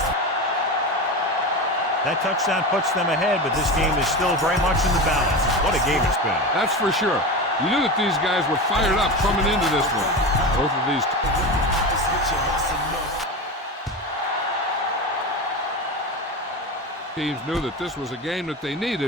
That touchdown puts them ahead, but this game is still very much in the balance. What a game it's been. That's for sure. You knew that these guys were fired up coming into this one. Both of these teams knew that this was a game that they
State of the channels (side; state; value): both; normal; correlation 0.24